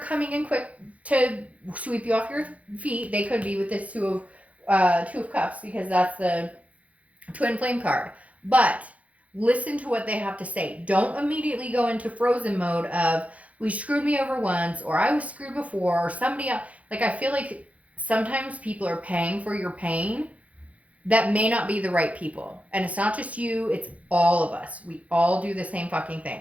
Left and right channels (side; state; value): left; late; 0.067 ms